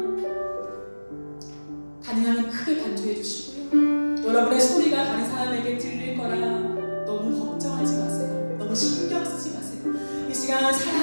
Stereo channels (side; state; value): both; inverted; correlation -1.00